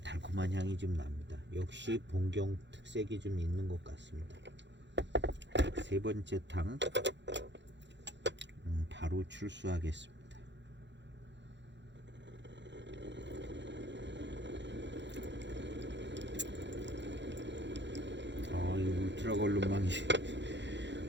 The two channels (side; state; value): left; late; 0.52 ms